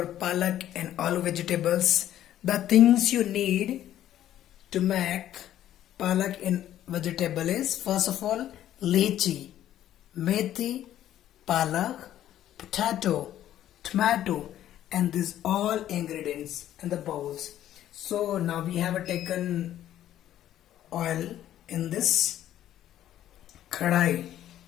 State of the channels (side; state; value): right; quieter; 12.1 dB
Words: palak and aloo vegetables, the things you need to make palak and vegetable is first of all lychee, methi, palak, potato, tomato, and these all ingredients in the bowls. So now we have taken oil in this kadai.